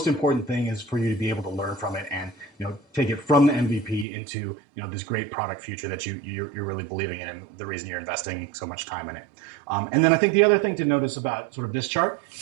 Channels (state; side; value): drops out; left; at 4.0 s